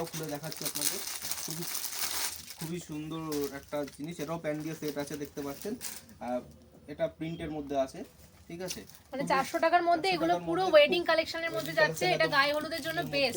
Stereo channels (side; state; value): both; identical; correlation 1.00